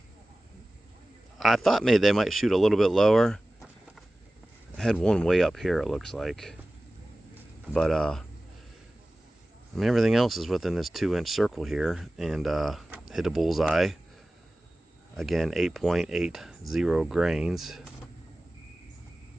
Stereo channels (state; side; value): normal; both; correlation 0.97